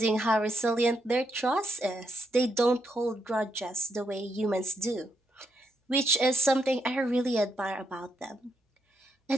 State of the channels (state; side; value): normal; both; correlation 0.79